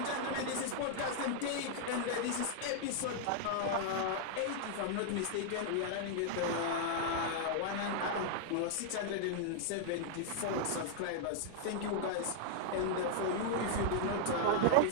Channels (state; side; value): different; both; correlation -0.01